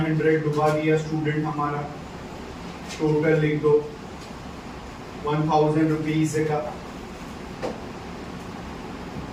डुबा दिया स्टूडेंट हमारा, टोटल लिख दो ₹1,000 का,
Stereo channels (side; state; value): both; identical; correlation 1.00